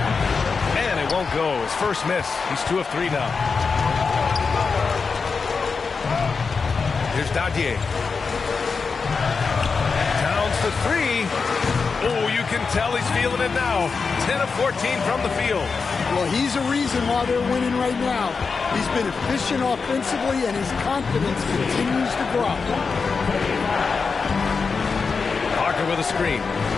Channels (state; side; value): quieter; right; 5.0 dB